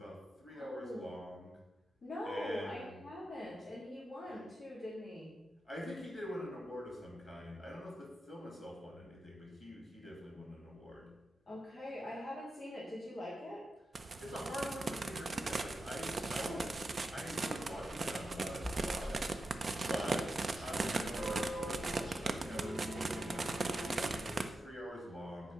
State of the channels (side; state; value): both; normal; correlation 0.89